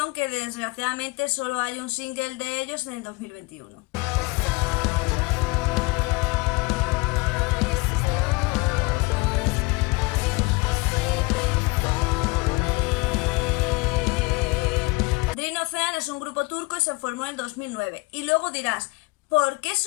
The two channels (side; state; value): right; quieter; 25.1 dB